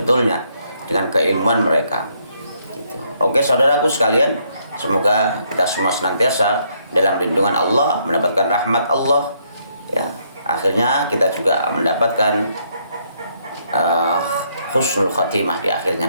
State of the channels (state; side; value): inverted; both; correlation -0.71